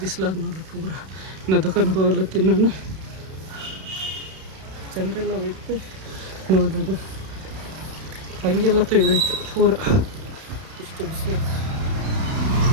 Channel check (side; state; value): left; late; 32 ms